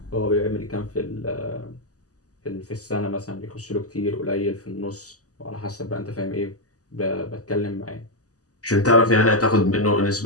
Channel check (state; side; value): late; right; 0.67 ms